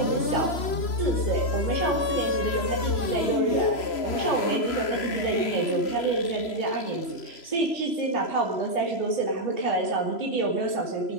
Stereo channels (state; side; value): late; right; 3.0 ms